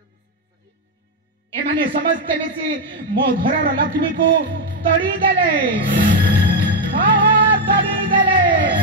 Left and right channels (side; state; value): both; normal; correlation 0.04